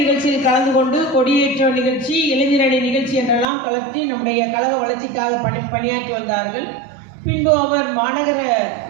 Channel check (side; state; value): left; drops out; at 3.5 s